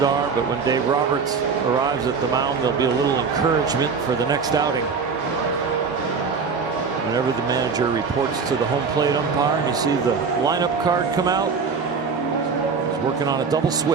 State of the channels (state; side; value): quieter; left; 5.3 dB